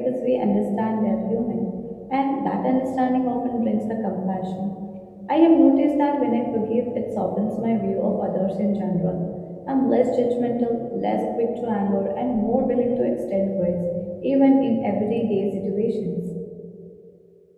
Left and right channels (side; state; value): both; identical; correlation 1.00